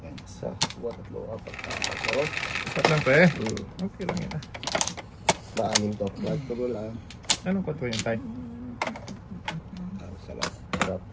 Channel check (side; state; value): both; identical; correlation 1.00